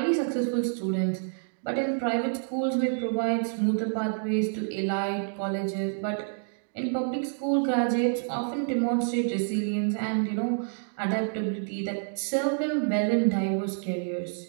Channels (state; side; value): silent; left; digital silence